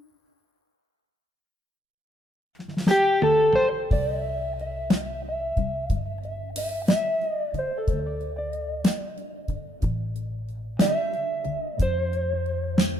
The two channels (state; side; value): normal; both; correlation 0.78